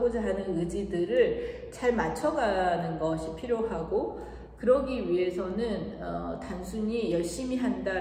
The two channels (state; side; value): identical; both; correlation 1.00